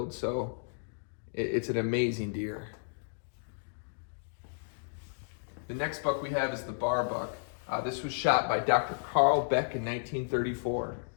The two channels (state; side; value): silent; right; digital silence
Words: so it's an amazing deer. The next buck we have is the bar buck. This was shot by Dr. Carl Beck in 1934.